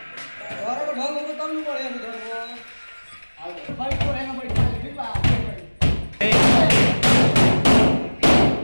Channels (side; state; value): both; inverted; correlation -1.00